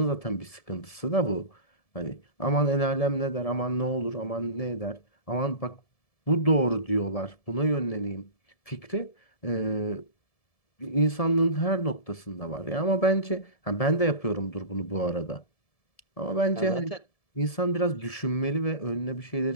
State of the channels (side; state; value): right; late; 1.7 ms